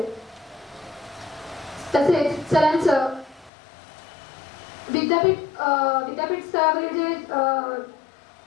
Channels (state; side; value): drops out; right; at 3.5 s